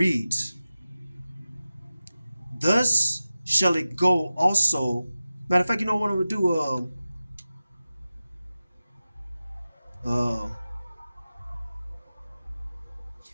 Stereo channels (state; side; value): inverted; both; correlation -0.95